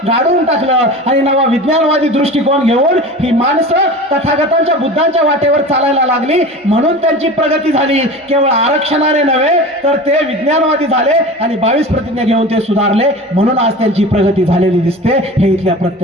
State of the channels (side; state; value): both; normal; correlation 0.34